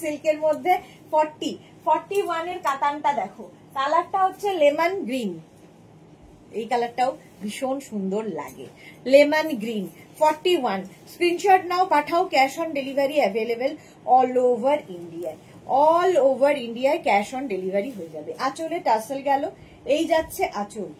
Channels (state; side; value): identical; both; correlation 1.00